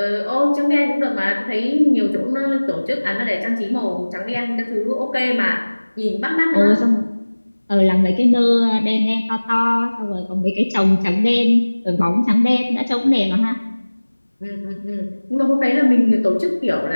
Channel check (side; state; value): both; inverted; correlation -1.00